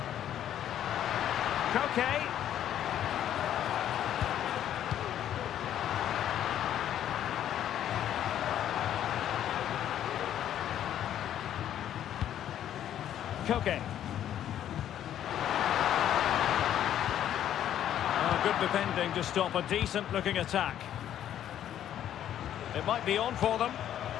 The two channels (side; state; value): right; quieter; 10.9 dB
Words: Koke. Koke. Oh, good defending to stop a decent-looking attack. It might be on for them.